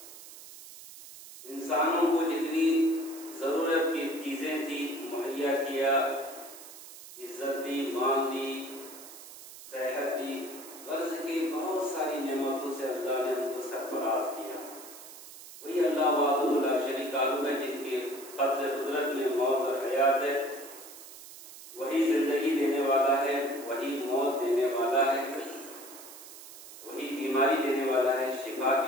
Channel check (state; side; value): noise; right; hiss, 16 dB below the sound